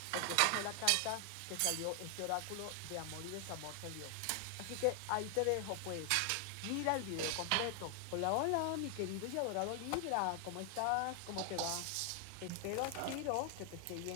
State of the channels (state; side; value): different; both; correlation 0.00